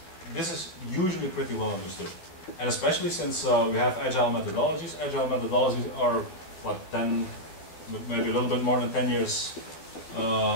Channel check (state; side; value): late; right; 12 ms